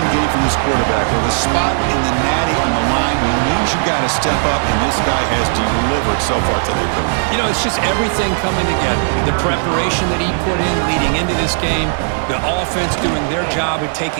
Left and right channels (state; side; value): silent; left; 59 dB below the other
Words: game from this quarterback. With a spot in the natty on the line, he knows you got to step up, and this guy has delivered so far today. You know, it's just everything coming together. The preparation that he put in leading into this game, the offense doing their job of